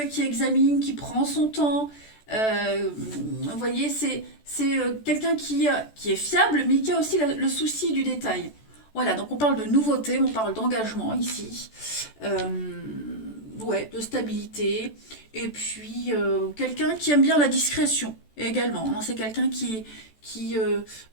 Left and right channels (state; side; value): late; right; 14 ms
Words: qui examine, qui prend son temps. Vous voyez, c'est quelqu'un qui est fiable, mais qui a aussi le souci du détail. Voilà, donc on parle de nouveauté, on parle d'engagement ici, ouais, de stabilité, et puis quelqu'un qui aime bien la discrétion également. Hein. C'est quelqu'un qui